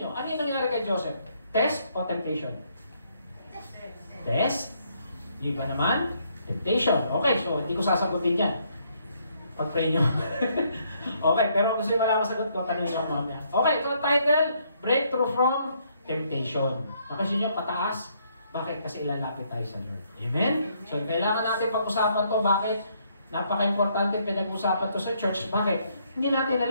nyo, ano yung nangyari kay Joseph? Test o temptation? Test? Di ba naman? Temptation. Okay, so hindi ko sasagutin yan. Pag-pray nyo. Okay, pero gusto yung malaman sagot ko, tanongin ako mamaya. Okay, ito ang title, Breakthrough from Temptation. Napansin nyo, pataas. Bakit? Kasi ilalapit tayo sa Lord. Amen? So, kailangan natin pag-usapan to. Bakit? Napaka-importante pinag-usapan to sa church. Bakit? Hindi natin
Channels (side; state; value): both; inverted; correlation -0.71